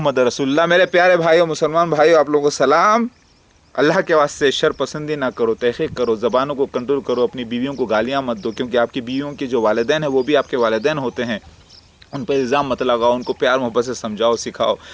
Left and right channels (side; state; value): both; identical; correlation 1.00